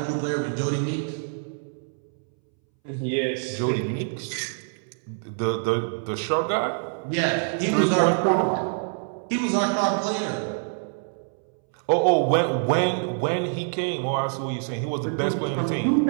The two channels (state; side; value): silent; left; 61 dB below the other